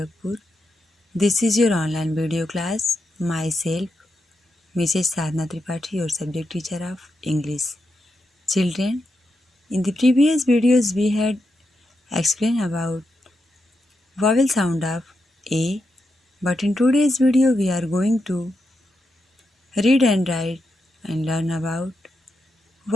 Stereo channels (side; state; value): both; normal; correlation 0.85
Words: This is your online video class. Myself, Mrs. Sadhna Tripathi, your subject teacher of English. Children, in the previous videos we had explained about vowel sound of A, but in today's video we are going to read and write and learn about